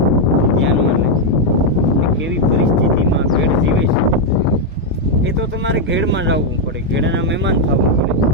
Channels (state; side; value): normal; both; correlation 0.00